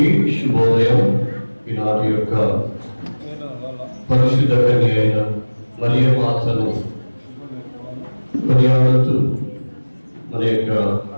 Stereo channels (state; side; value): inverted; both; correlation -1.00